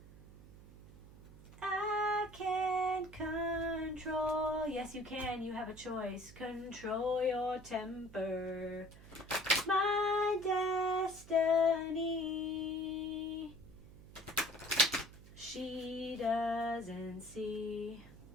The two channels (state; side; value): noise; right; hum, 19 dB below the sound